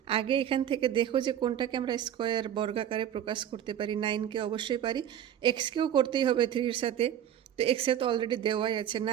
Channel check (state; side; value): quieter; left; 10.3 dB